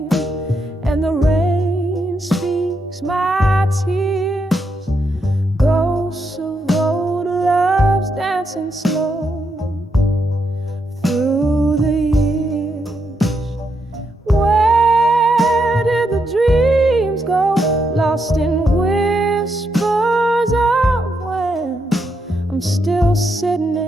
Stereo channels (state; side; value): normal; both; correlation 0.80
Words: and the rain speaks my tears, ghosts of old love. dancing slow through the years. Where did the dreams go? Lost in whispers of when I'm still sitting